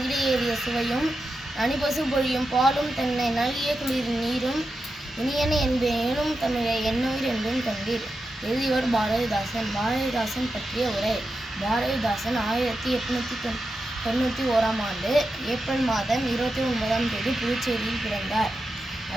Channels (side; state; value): both; normal; correlation 0.89